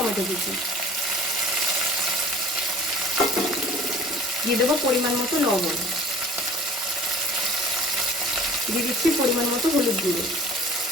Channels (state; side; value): normal; both; correlation 0.47